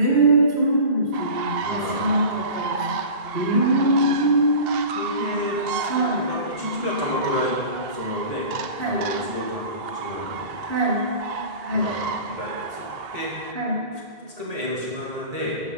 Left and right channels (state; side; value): late; left; 2.7 ms